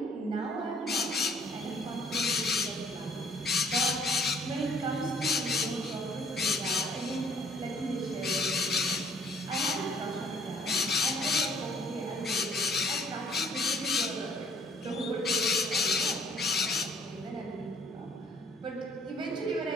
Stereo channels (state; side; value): normal; both; correlation 0.60